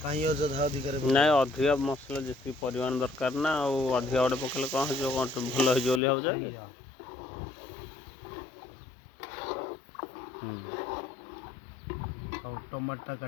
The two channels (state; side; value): drops out; right; at 6.0 s